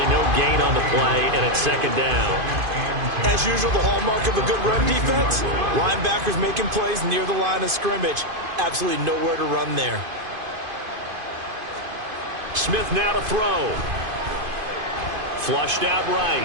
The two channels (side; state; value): left; late; 2.5 ms